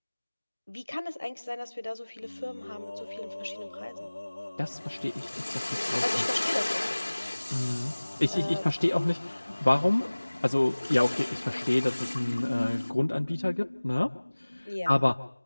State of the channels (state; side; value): inverted; both; correlation -1.00